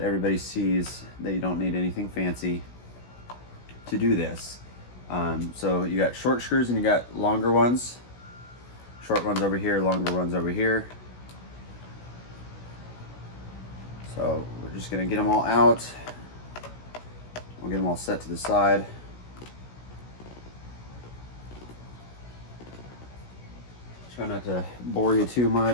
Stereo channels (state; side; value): late; right; 16 ms